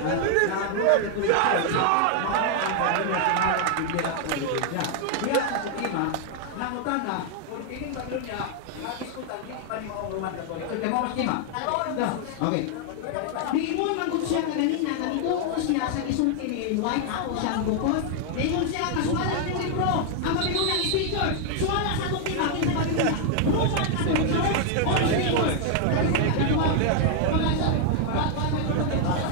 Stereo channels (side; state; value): both; different; correlation 0.00